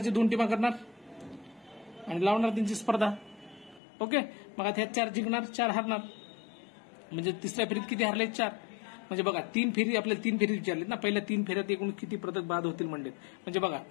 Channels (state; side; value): drops out; right; at 3.8 s